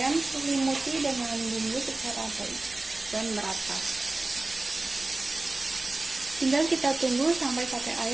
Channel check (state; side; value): quieter; left; 3.1 dB